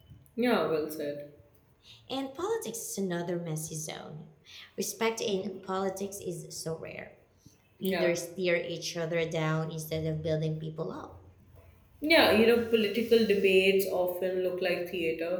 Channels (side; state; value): both; identical; correlation 1.00